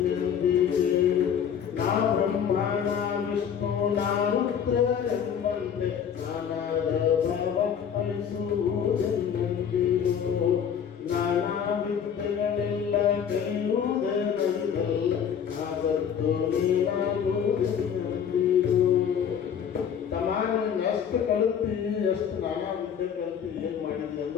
ನಾ ಬ್ರಹ್ಮ ನಾ ವಿಷ್ಣು ನಾ ರುದ್ರ ಎಂಬಂತೆ ನಾನಾದ ಭಾವ ಫಲಿಸುವುದೆಂದಿಗೋ, ನಾನಾ ವಿದ್ಯೆಗಳೆಲ್ಲ ಕಲಿಯುವುದೇ ನರಿದಲ್ಲ, ನಾ ಸತ್ತು ನೀನಾಗುವುದೆಂದಿಗೋ. ಎಷ್ಟು ಕಲಿತೀವಿ, ಎಷ್ಟು ನಾನಾ ವಿದ್ಯೆ ಕಲಿತು ಏನ್ ಮಾಡಿದ್ವಿ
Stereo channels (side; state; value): right; quieter; 8.0 dB